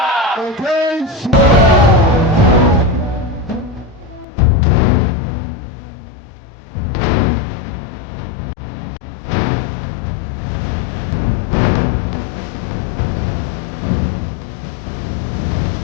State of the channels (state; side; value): drops out; right; at 4.2 s